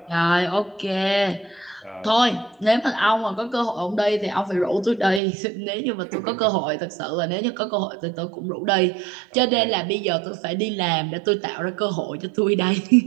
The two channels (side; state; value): left; drops out; at 5.2 s